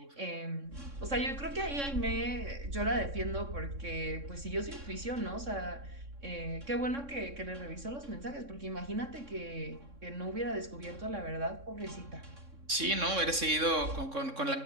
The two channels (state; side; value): late; left; 3.6 ms